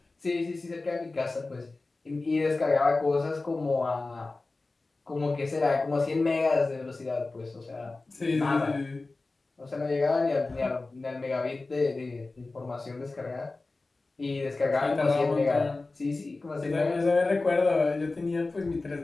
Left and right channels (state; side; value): quieter; right; 3.4 dB